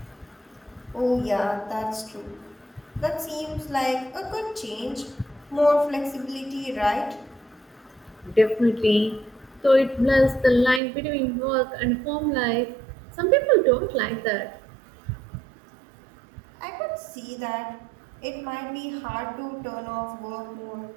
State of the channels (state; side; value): drops out; left; at 10.8 s